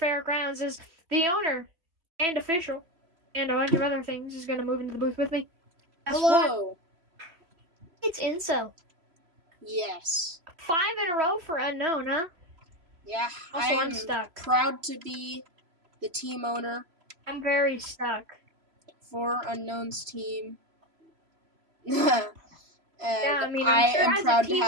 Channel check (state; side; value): late; left; 3.0 ms